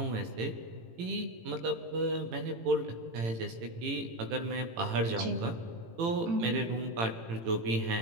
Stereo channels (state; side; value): late; left; 18 ms